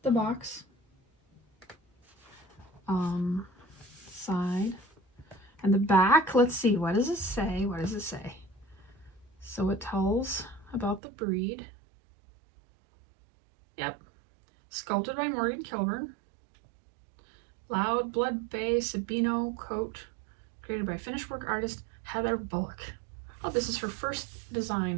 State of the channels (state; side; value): drops out; left; at 11.0 s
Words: the box. Side. And the back, let's see, what does it say? What does it say? So it tells about the breed. Yep. Sculpted by Morgan Kilburn. Loud Blood Bay Sabino coat. Created by finished work artist Heather Bullock. Oh, this is her first